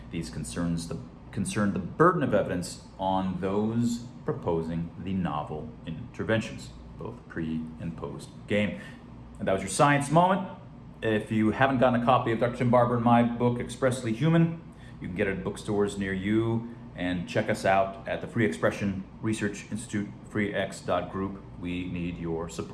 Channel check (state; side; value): identical; both; correlation 1.00